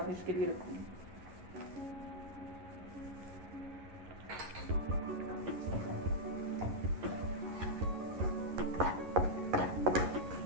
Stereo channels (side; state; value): left; late; 11 ms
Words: के लिए रखूँगी।